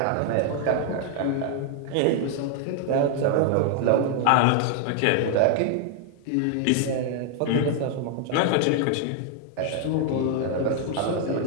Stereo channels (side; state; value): both; different; correlation 0.00